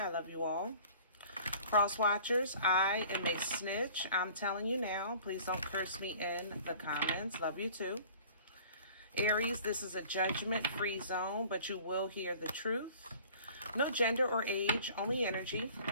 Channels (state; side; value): inverted; both; correlation -0.48